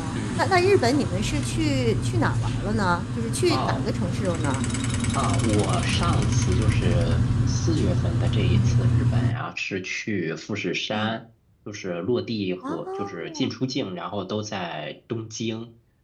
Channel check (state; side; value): identical; both; correlation 1.00